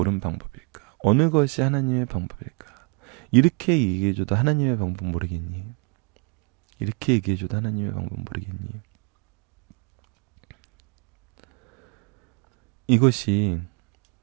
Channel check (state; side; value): quieter; left; 33.8 dB